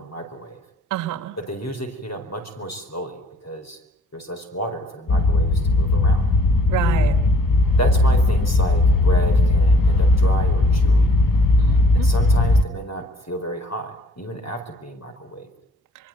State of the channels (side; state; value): both; normal; correlation 0.60